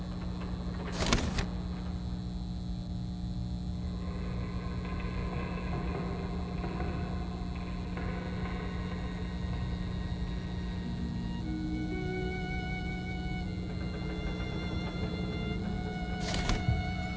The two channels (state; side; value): identical; both; correlation 1.00